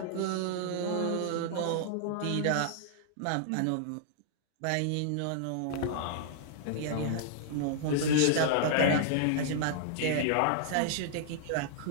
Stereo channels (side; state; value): both; different; correlation -0.01